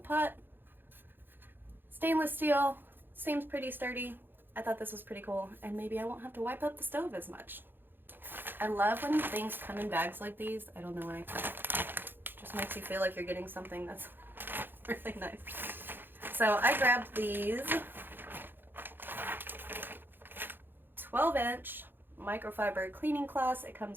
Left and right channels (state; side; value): late; left; 0.098 ms